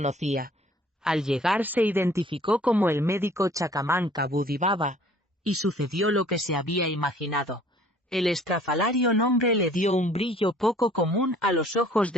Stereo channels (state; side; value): normal; both; correlation 0.55